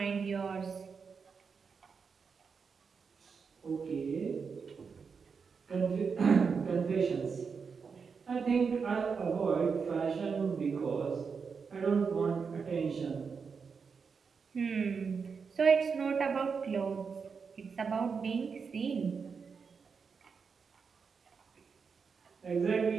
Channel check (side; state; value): left; quieter; 5.6 dB